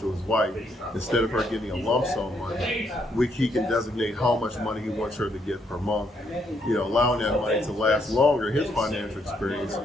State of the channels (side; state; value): both; normal; correlation 0.73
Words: his wife, instead of her getting a lump sum money, he can designate how much money he wants her to get per month, allowing that money to last longer, his financial experience.